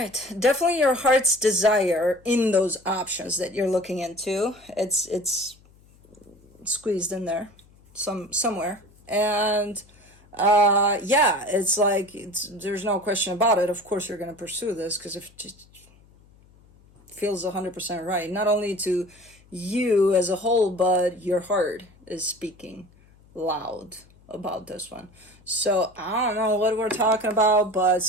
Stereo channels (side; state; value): left; noise; hum, 28 dB below the sound